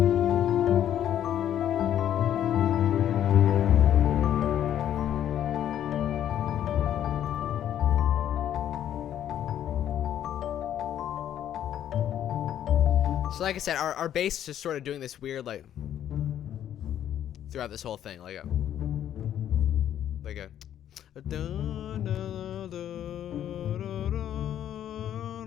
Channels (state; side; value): quieter; right; 10.7 dB